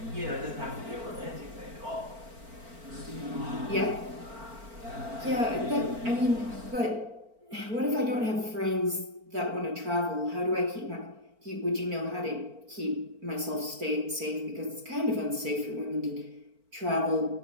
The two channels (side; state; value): left; late; 4.4 ms